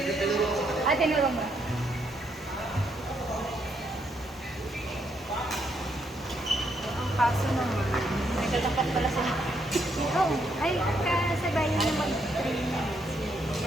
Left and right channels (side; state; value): both; normal; correlation 0.75